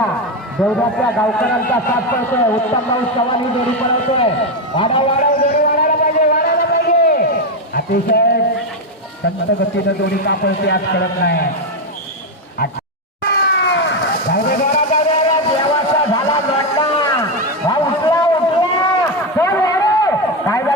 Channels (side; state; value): both; normal; correlation 0.08